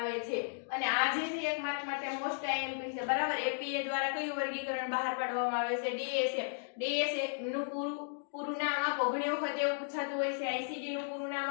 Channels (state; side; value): silent; right; digital silence